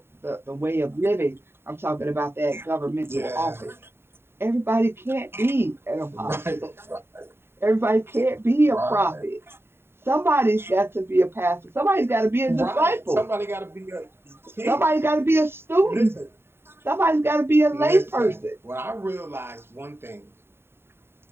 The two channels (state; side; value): late; left; 0.11 ms